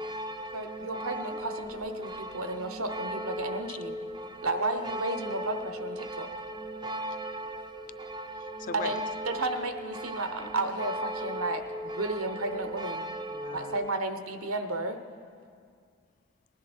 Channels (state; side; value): normal; both; correlation -0.18